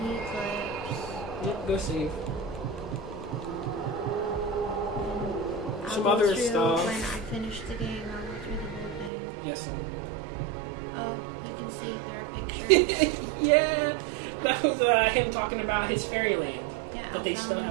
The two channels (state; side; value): drops out; left; at 9.1 s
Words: the eclipse. Yep, go save. I'll Some go other through stuff. When I finish the game, I'll go through the whole thing. Yes, Oh, you can see there are pictures. yeah, that was him talking about his fairyland Yeah, that they still Alpha.